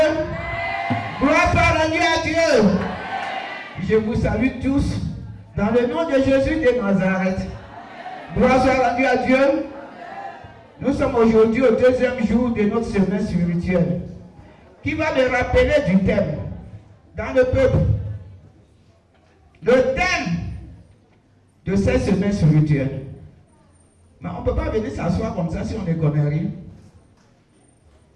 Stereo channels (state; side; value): identical; both; correlation 1.00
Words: Gloire soit rendue à Dieu. Je vous salue tous dans le nom de Jésus de Nazareth. Gloire soit rendue à Dieu. Nous sommes aujourd'hui au deuxième jour de notre semaine spirituelle qui va me rappeler du thème dans le peuple. Le thème de cette semaine spirituelle. Mais on ne peut pas venir s'asseoir comme ça si on ne connaît rien.